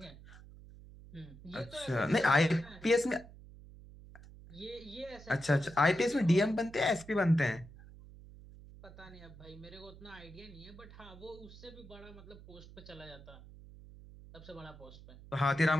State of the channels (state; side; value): noise; right; hum, 18 dB below the sound